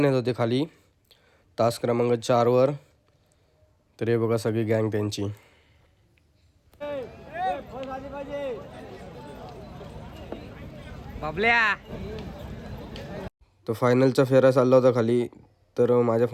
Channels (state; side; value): identical; both; correlation 1.00